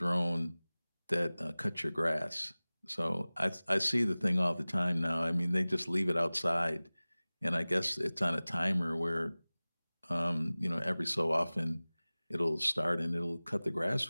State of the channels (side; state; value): both; inverted; correlation -0.99